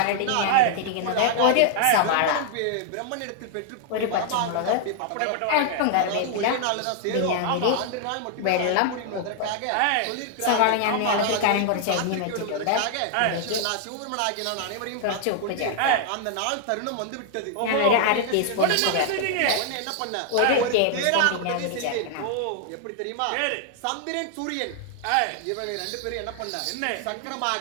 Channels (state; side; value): different; both; correlation 0.00